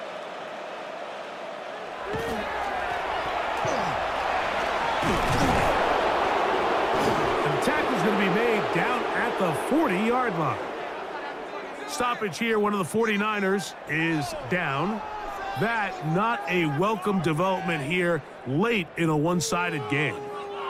Tackle's going to be made down at the 40-yard line. Stoppage here. One of the 49ers is down. That not a welcome development here late in a one-sided game.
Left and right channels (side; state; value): both; identical; correlation 1.00